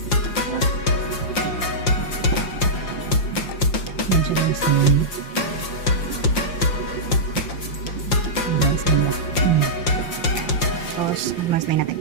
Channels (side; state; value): right; late; 5.7 ms